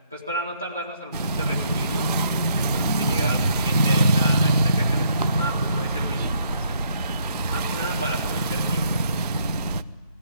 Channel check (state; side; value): inverted; both; correlation -0.70